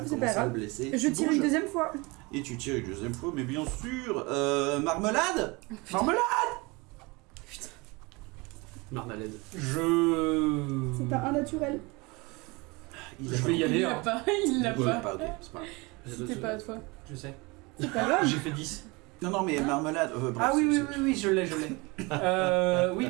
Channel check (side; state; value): left; quieter; 25.8 dB